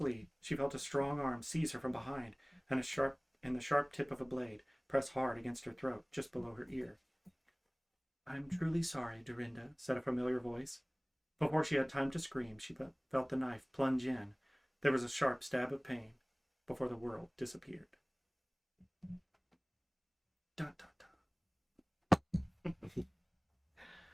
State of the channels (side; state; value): both; identical; correlation 1.00